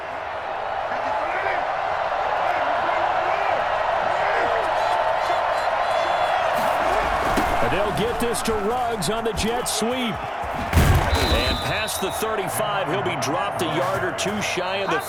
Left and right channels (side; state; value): both; identical; correlation 1.00